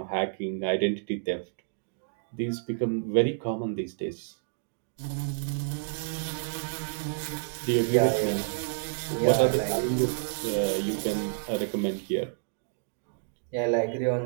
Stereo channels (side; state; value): left; silent; digital silence